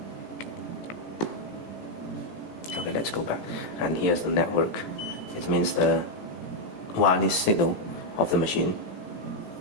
Okay, let's go back. And here's the network. It means the wireless signal of the machine.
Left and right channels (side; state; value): right; late; 17 ms